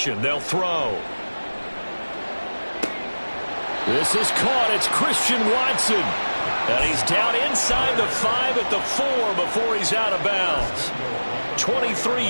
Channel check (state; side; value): inverted; both; correlation -1.00